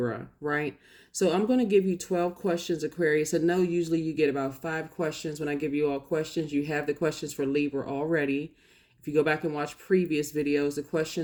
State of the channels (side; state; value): both; identical; correlation 1.00